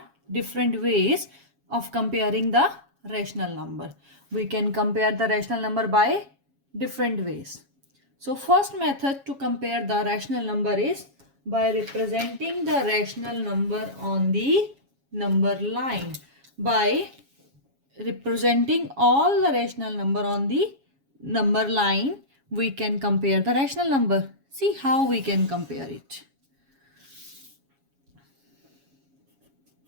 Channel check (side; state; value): left; late; 7.3 ms